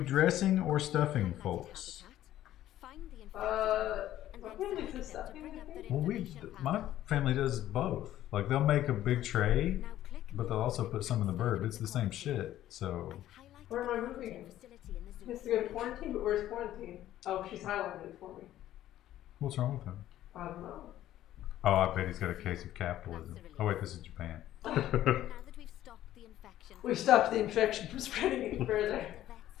dressing or stuffing, folks? My family does stuffing, I think. Well, my family does both. Like, they'll make a big tray, but they'll also put some in the bird. It's the same shit, so... Where am I moving? He has to go to quarantine, but where's quarantine? Oh, she's highlighted it for me. What's wrong with him? I don't know. Oh, I bet he's got a case of capitalism. Oh wait, this is Japan. We've stopped the infection from spreading any further.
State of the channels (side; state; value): right; quieter; 13.1 dB